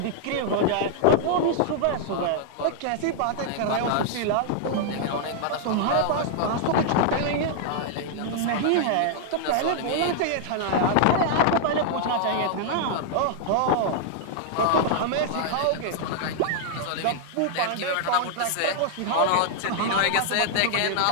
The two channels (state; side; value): different; both; correlation -0.01